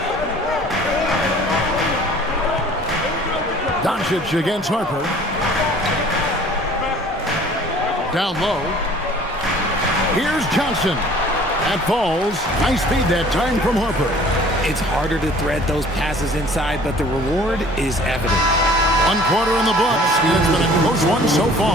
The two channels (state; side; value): normal; both; correlation 0.51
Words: Doncic against Harper. Down low. Here's Johnson. That falls. Nice feed that time from Harper. It's harder to thread those passes inside, but the reward is evident. 1 quarter in the books. It's been a close one so